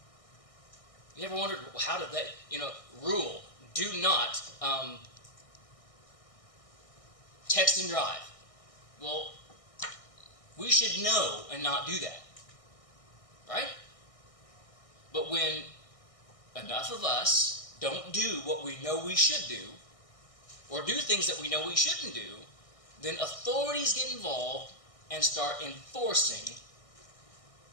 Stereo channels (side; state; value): right; late; 1.6 ms